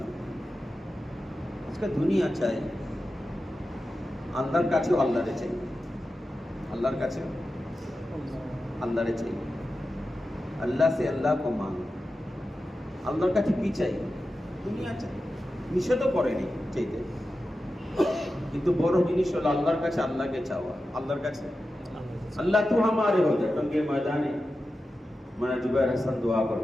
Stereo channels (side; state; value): both; normal; correlation 0.92